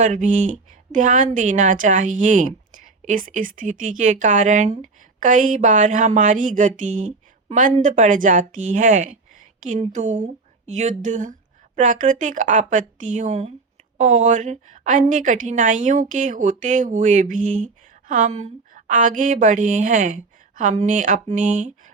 भी ध्यान देना चाहिए। इस स्थिति के कारण कई बार हमारी गति मंद पड़ जाती है, किंतु युद्ध, प्राकृतिक आपत्तियों और अन्य कठिनाइयों के होते हुए भी हम आगे बढ़े हैं। हमने अपने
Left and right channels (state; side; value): quieter; left; 4.0 dB